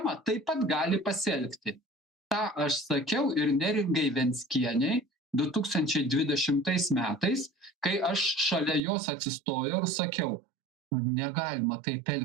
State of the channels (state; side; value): drops out; left; at 8.8 s